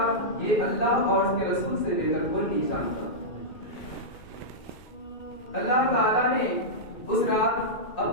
یہ اللہ اور اس کے رسول سے بے کر کوئی نہیں جانتا۔ اللہ تعالیٰ نے اس رات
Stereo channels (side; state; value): right; late; 2.6 ms